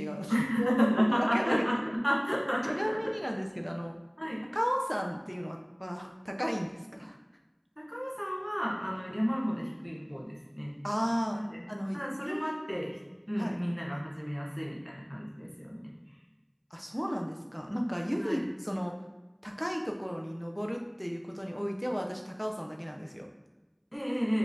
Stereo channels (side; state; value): both; identical; correlation 1.00